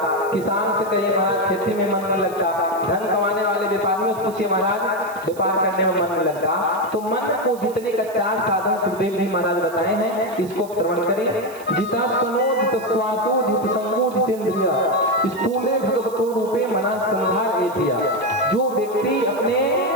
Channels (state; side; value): noise; right; hiss, 20 dB below the sound